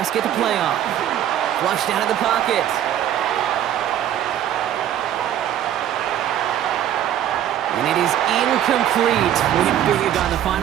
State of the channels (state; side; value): quieter; left; 11.0 dB